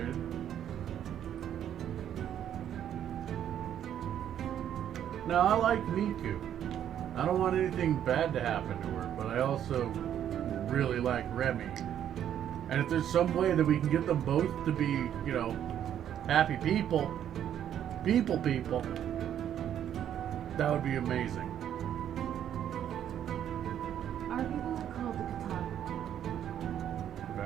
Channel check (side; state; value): left; quieter; 10.1 dB